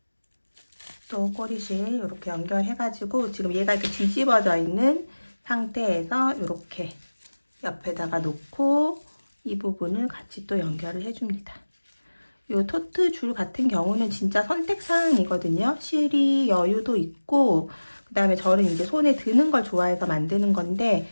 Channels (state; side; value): inverted; both; correlation -1.00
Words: 또 꼬리실 이렇게 연결해가지고 지금 얘가 이렇게 뒤집어져 있는 상태에서 이렇게 옆에다가 놓고 이 부분을 같이 또 연결을 해줍니다. 이 토트 줄 같은 경우는 진짜 선택사항이거든요. 실이 여유도 있고, 그 다음에 저는 이제 손에 드는 걸 좋아해서 만드는 건데,